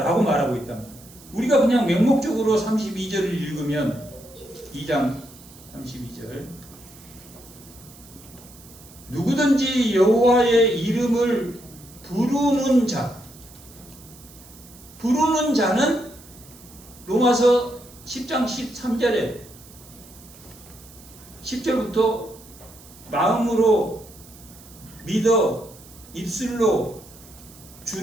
말하고 있답니다. 우리가 그냥 맹목적으로 32절을 읽으면 2장 32절 누구든지 여호와의 이름을 부르는 자, 부르는 자는 로마서 10장 13절에 10절부터 마음으로 믿어 입술로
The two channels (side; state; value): right; noise; hiss, 21 dB below the sound